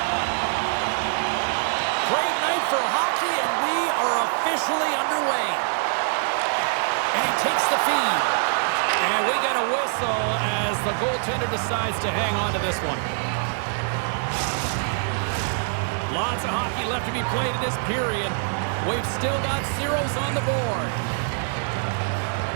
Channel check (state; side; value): silent; left; digital silence